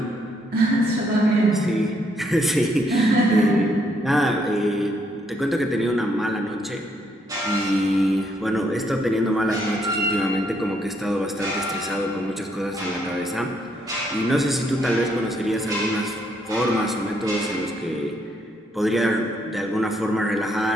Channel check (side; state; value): both; normal; correlation 0.73